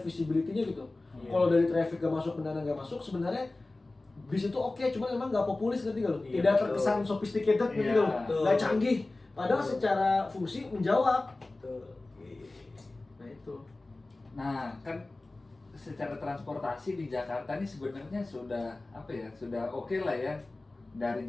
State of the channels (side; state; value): right; quieter; 3.0 dB